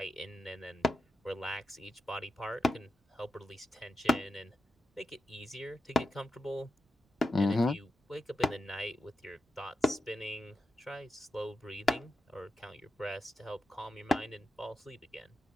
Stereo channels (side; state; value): both; normal; correlation 0.89